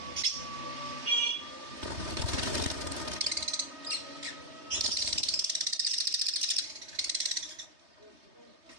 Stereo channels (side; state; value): left; late; 3.2 ms